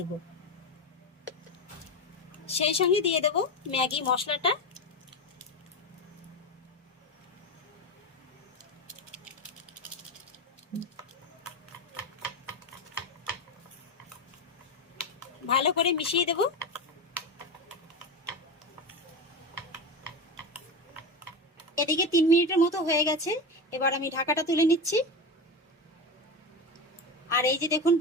সেই সঙ্গে দিয়ে দেব ম্যাগি মশলাটা, ভালো করে মিশিয়ে দেব। এদিকে 3 মিনিটের মতো হয়ে গেছে, এবার আমি ঢাকাটা তুলে নিচ্ছি। আর এই যে দেখুন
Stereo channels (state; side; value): normal; both; correlation 0.20